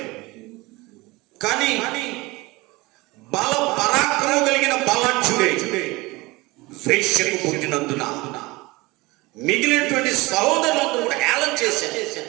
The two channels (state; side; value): quieter; left; 22.4 dB